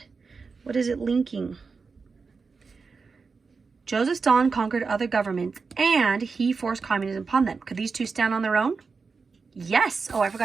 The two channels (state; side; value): quieter; left; 4.8 dB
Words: What is it linking? Joseph Stalin conquered other governments and he forced communism upon them. Could these two stand on their own? Yes. Oh, I